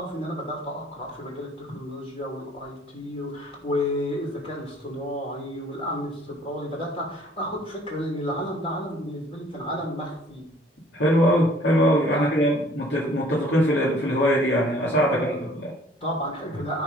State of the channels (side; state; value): both; normal; correlation 0.56